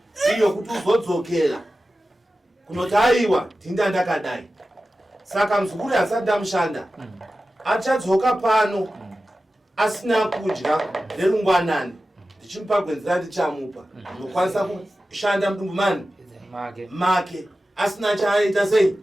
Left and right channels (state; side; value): normal; both; correlation 0.94